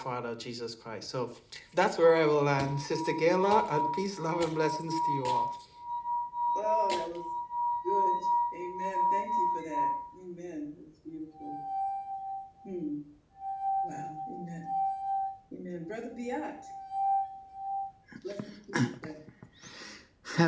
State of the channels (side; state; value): both; identical; correlation 1.00